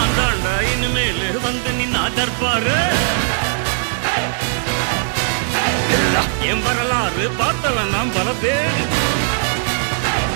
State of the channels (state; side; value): silent; left; digital silence